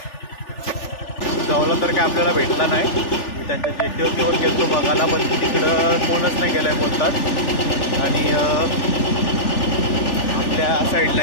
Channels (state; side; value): late; right; 3.4 ms